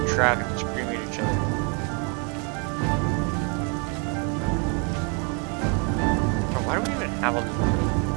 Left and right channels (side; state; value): left; quieter; 34.6 dB